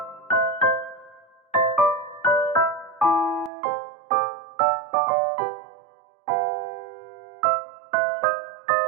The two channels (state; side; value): drops out; left; at 3.5 s